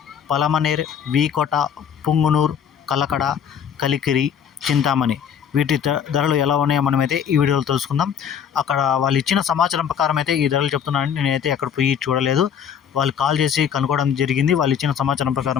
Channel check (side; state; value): right; quieter; 8.1 dB